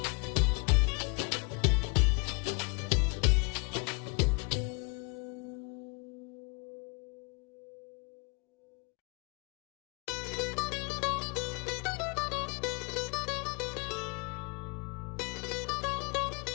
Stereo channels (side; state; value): right; quieter; 31.3 dB